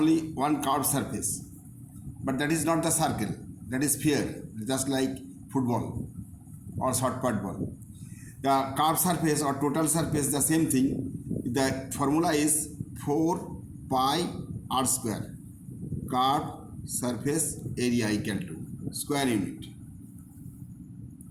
one curved surface, but that is not the circle. That is sphere, just like football or short put ball. The curved surface or total surface, the same thing. The formula is 4 pi r square. Curved surface area equal to square unit,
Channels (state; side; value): identical; both; correlation 1.00